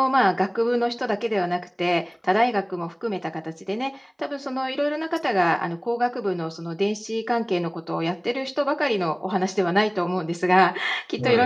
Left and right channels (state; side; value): identical; both; correlation 1.00